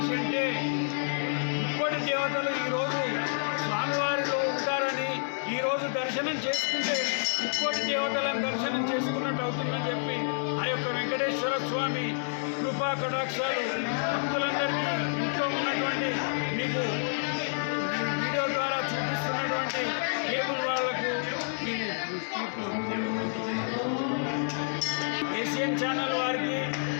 అంటే ముక్కోటి దేవతలు ఈరోజు స్వామివారిలో ఉంటారని ఈరోజు దర్శనం చేసుకుంటే ముక్కోటి దేవతలను దర్శనం చేసుకున్నట్టు అవుతుందని చెప్పి ఆ యొక్క వెంకటేశ్వర స్వామి కృపా కటాక్షాలు భక్తులందరికీ ఇంట్లో ఉన్నటువంటి మీకు వీడియో ద్వారా చూపిస్తున్నటువంటి కేబుల్ వాళ్లకు ఈ ఏషియన్ ఛానల్ వారికి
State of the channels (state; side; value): silent; right; 59 dB below the other